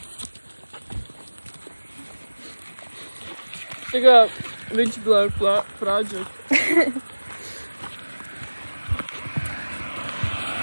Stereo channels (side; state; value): both; inverted; correlation -1.00